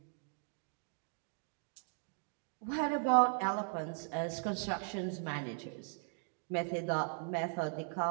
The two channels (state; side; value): silent; left; 52 dB below the other